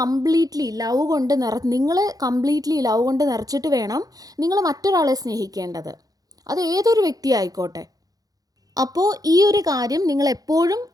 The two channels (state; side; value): late; left; 0.18 ms